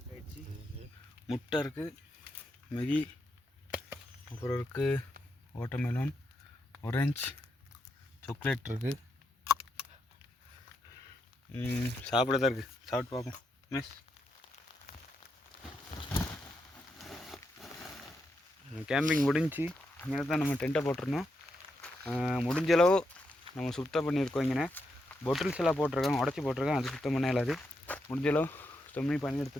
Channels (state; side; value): normal; both; correlation 0.83